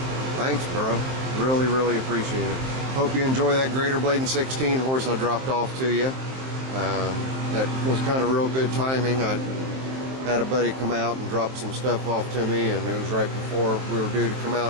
thanks, bro. Really appreciate it. Hope you enjoy that Greater Bladen 16 horse I dropped off to you. That was kind of real good timing. I had a buddy come out and drop some stuff off to me, and it was right before we were due to come out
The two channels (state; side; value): late; left; 23 ms